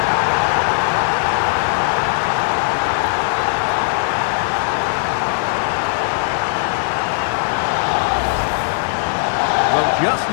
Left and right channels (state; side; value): silent; right; digital silence